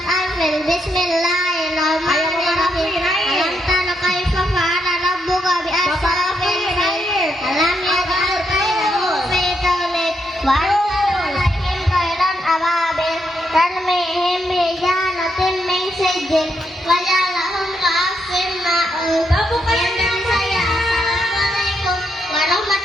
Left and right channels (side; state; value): both; normal; correlation 0.79